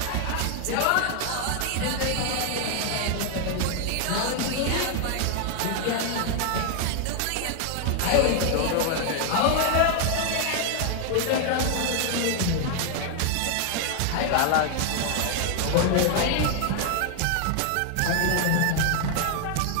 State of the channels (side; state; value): both; different; correlation 0.00